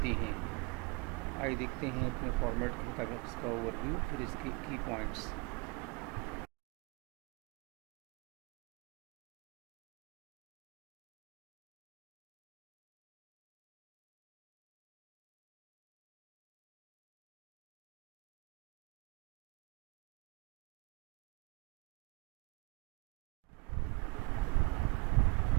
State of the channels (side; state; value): left; quieter; 26.8 dB